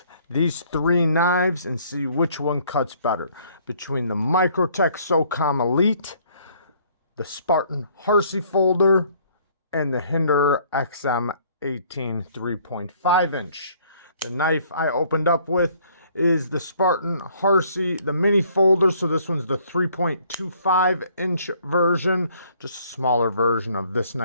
these three knives and see which one cuts better between the Microtech SOCOM Elite, the Spartan Harsey Folder, and the Hinderer XM-18 3.5 inch. The knife I opened up with is the Spartan Harsey, the mini folder. So this one's the 3.25 inch version, just a smaller version of this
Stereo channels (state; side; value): inverted; both; correlation -0.61